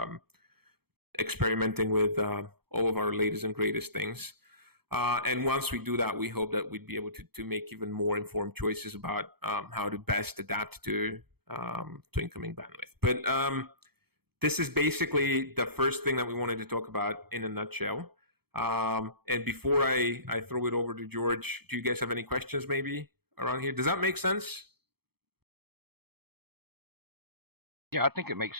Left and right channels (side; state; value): left; late; 0.96 ms